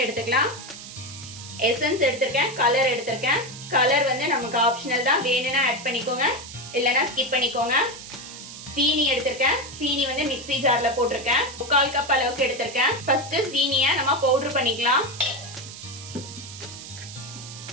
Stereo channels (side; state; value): right; noise; hiss, 13 dB below the sound